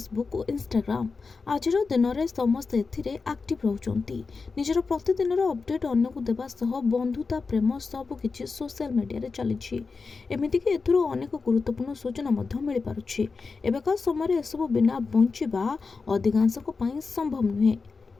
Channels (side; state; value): right; quieter; 4.5 dB